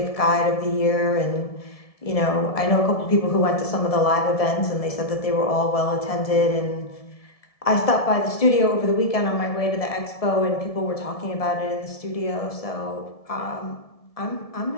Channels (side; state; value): right; late; 1.7 ms